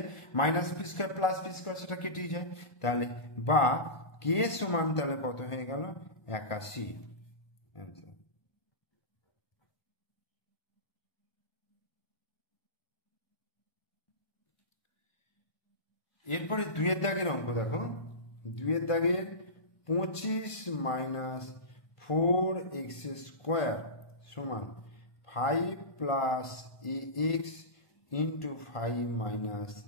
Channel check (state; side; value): late; right; 1.5 ms